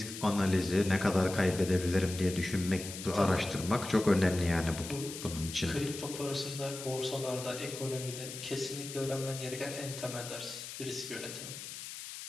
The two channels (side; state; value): left; noise; hiss, 10 dB below the sound